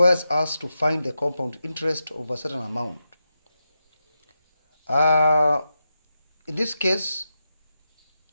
us to find the compound interest of a certain amount. In this case,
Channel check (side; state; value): both; inverted; correlation -0.88